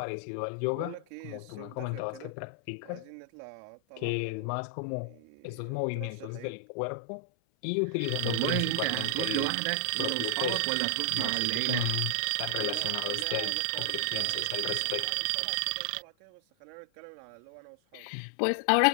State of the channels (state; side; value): different; both; correlation 0.00